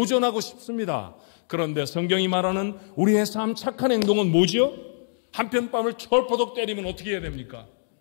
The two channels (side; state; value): right; silent; digital silence